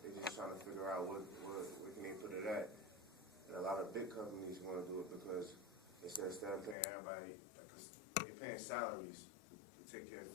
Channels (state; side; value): drops out; right; at 6.8 s